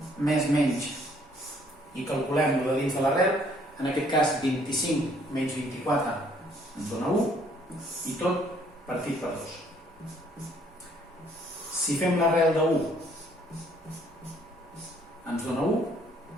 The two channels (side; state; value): both; normal; correlation 0.63